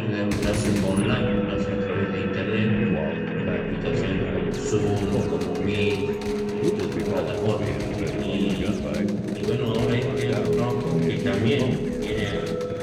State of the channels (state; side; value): identical; both; correlation 1.00